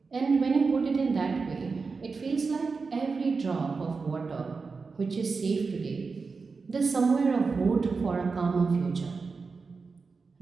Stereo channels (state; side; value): quieter; left; 4.6 dB